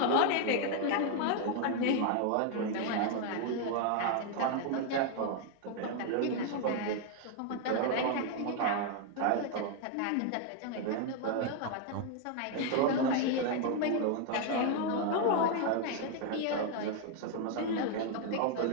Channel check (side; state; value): both; different; correlation 0.00